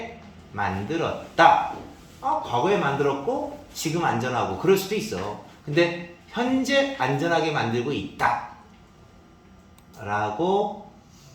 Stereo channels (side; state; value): both; identical; correlation 1.00